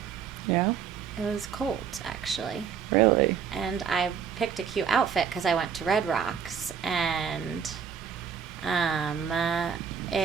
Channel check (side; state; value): left; quieter; 7.2 dB